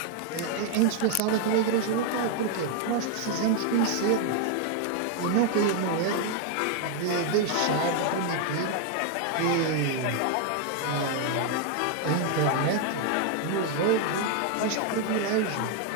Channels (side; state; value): both; different; correlation 0.00